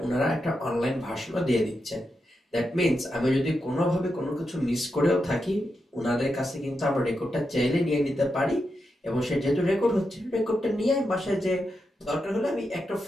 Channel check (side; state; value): both; normal; correlation 0.86